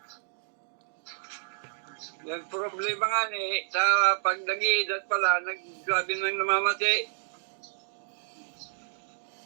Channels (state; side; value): silent; left; 58 dB below the other